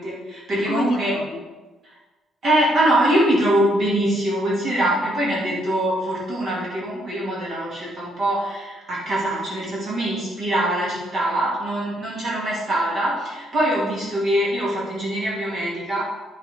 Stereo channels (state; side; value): normal; both; correlation 0.72